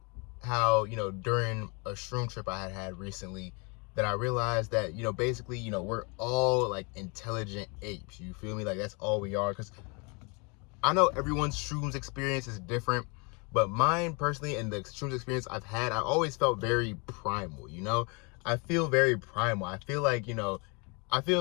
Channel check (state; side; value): quieter; right; 31.8 dB